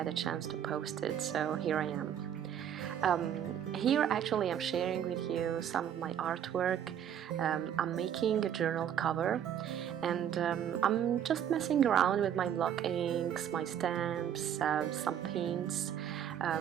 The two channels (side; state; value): left; quieter; 9.5 dB